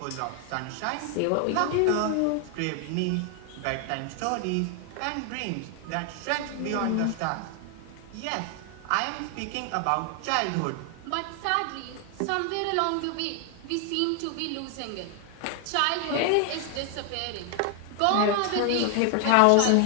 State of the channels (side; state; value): both; different; correlation 0.00